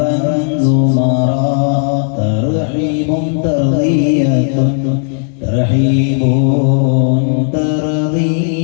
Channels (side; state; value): right; silent; 64 dB below the other